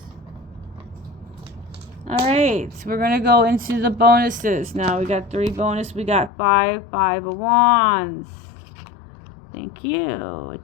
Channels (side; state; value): right; drops out; at 6.3 s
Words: Alright, we're going to go into the bonuses. Now we got 3 bonus. We got 5 of Wands. Thank you. It